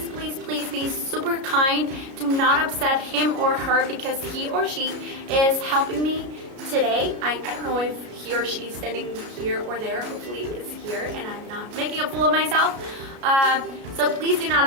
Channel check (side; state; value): left; late; 33 ms